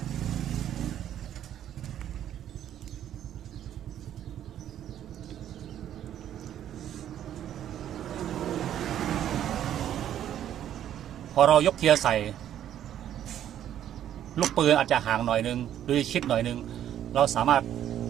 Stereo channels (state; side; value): quieter; left; 10.8 dB